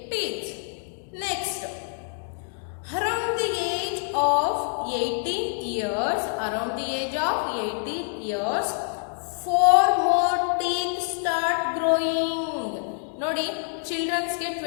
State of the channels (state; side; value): silent; right; 61 dB below the other